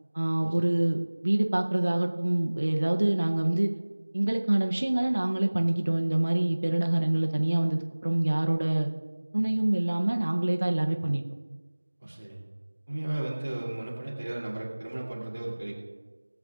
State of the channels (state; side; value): inverted; both; correlation -1.00